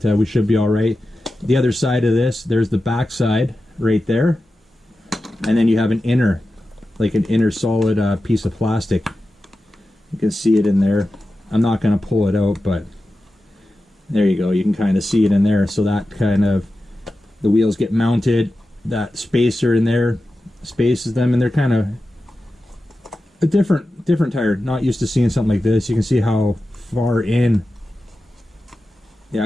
we should be all right. The other side of this, there's the back side right there, and then you have an inner, like an inner solid piece of plastic. You can see it in there. I'm not going to pull it out, but there you go. You can kind of see it in there. So that kind of, the wheels get mounted that spacer in there spaces them, and they're kind of a different tire. Not used to seeing something like this. You can see how far in the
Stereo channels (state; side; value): normal; both; correlation 0.93